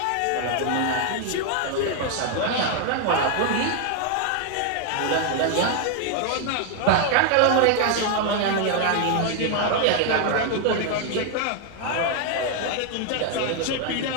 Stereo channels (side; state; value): both; different; correlation 0.00